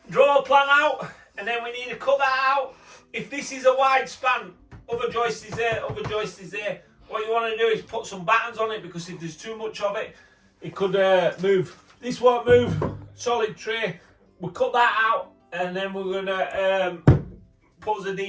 Draw a plan out, and then we need to cut that out. If this is a wide span, other joist is there, other joist is there. What you want to do is put some battens on it, because if there's too much of it, it could move. This won't move, solid tray. We'll cut that out, and then we're going to put the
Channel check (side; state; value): both; identical; correlation 1.00